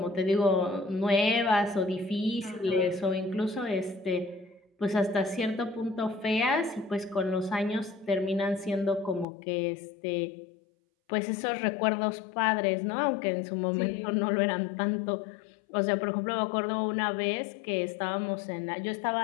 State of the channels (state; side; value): drops out; right; at 9.2 s